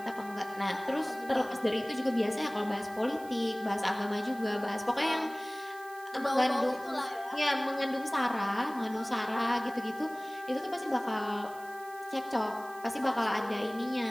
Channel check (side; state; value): right; noise; hiss, 21 dB below the sound